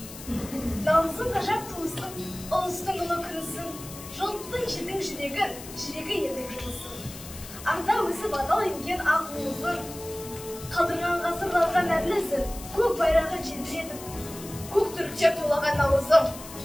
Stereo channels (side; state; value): left; noise; hiss, 14 dB below the sound